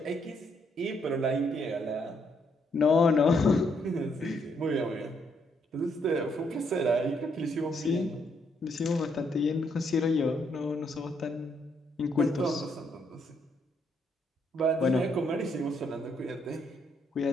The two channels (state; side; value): normal; both; correlation 0.74